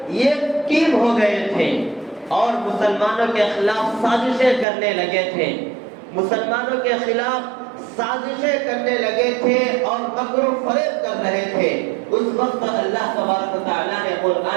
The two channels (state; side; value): drops out; left; at 4.7 s